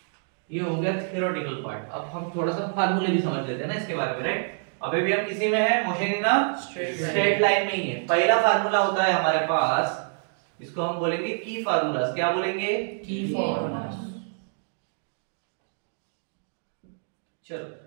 ये हो गया थ्योरेटिकल पार्ट। अब हम थोड़ा सा फार्मूले भी समझ लेते हैं ना इसके बारे में, राइट। अभी भी हम किसी में है, motion in a straight line में ही है। पहला फार्मूला होता है हमारे पास, इसको हम बोलेंगे की फार्मूलाज। क्या बोलेंगे? की फॉर्मूला। चलो,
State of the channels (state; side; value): silent; left; 60 dB below the other